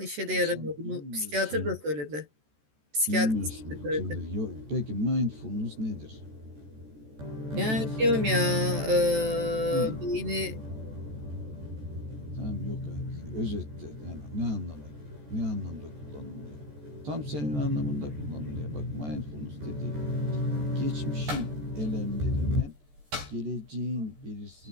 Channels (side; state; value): left; late; 14 ms